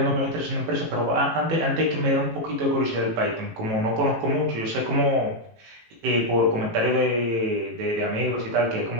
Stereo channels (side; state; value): left; late; 18 ms